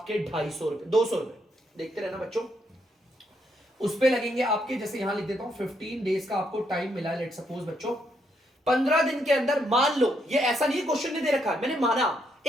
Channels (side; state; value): both; normal; correlation 0.76